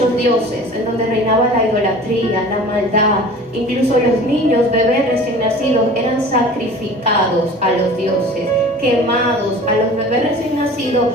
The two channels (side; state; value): both; normal; correlation 0.42